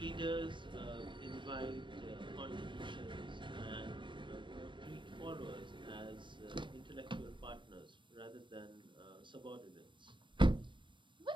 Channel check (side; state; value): left; late; 0.23 ms